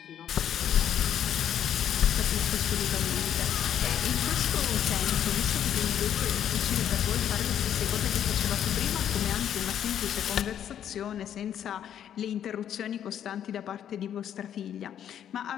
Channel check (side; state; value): right; quieter; 9.8 dB